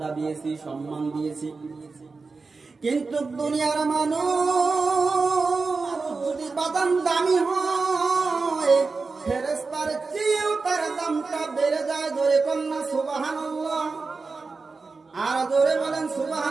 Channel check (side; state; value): left; quieter; 4.2 dB